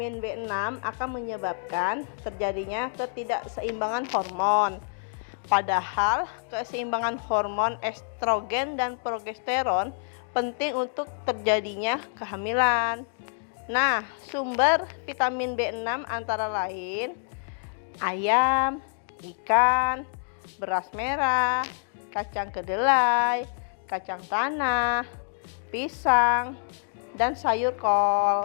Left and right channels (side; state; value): right; silent; digital silence